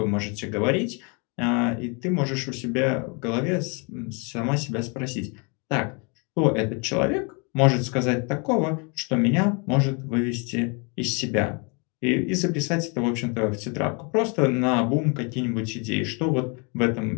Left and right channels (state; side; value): quieter; right; 33.6 dB